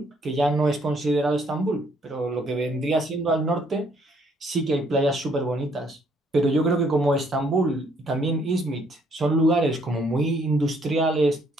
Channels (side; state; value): both; normal; correlation 0.67